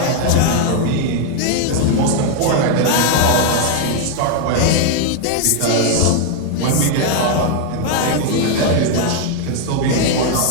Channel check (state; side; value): different; both; correlation 0.00